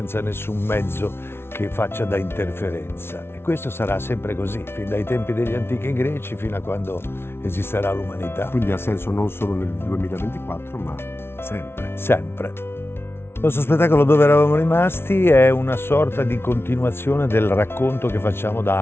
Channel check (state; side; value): late; right; 0.12 ms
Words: nessun mezzo che faccia da interferenza. E questo sarà sempre così, fin dai tempi degli antichi greci fino a quando esisterà l'umanità. Quindi ha senso non solo nel 2024, ma sempre. Sempre. Il nostro spettacolo Dove eravamo rimasti è una sorta di continuazione del racconto che facciamo